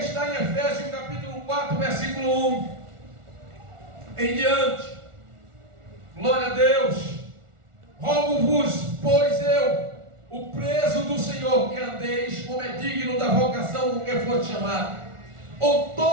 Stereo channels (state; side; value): late; left; 1.4 ms